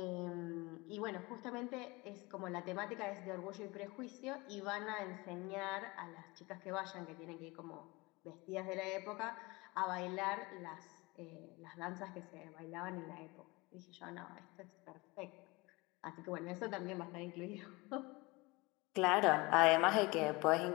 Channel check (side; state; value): right; quieter; 24.1 dB